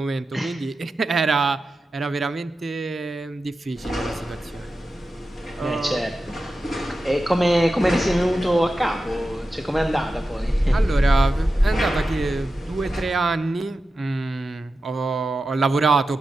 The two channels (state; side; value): normal; both; correlation 0.92